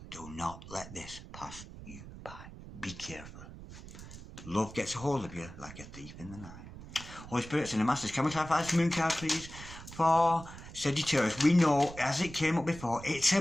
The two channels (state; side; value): noise; right; rumble, 14 dB below the sound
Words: Do not let this pass you by. Be careful. Love gets a hold of you like a thief in the night. Holy Spirits and the Masters, can we clarify this moon card, please? For Sagittarius, we know, as it came up before, it's